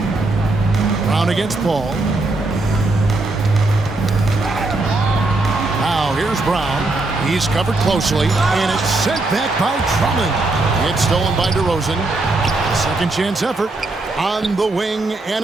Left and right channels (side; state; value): left; quieter; 3.0 dB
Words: Brown against Paul. Now here's Brown. He's covered closely, and it's sent back by Drummond. It's stolen by DeRozan. A second chance effort on the wing,